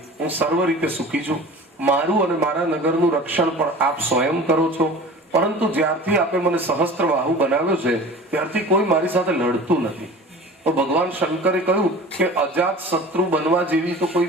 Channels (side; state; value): both; normal; correlation 0.40